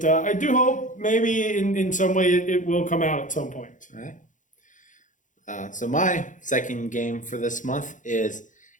I do hope maybe in some way it will come out at some point. All right. So my second game for this month is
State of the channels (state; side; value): late; right; 0.37 ms